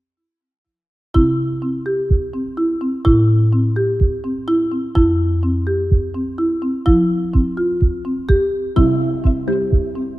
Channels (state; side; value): normal; both; correlation 0.96